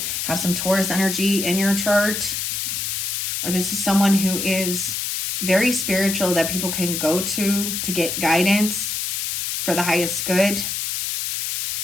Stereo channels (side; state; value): left; noise; hiss, 2 dB below the sound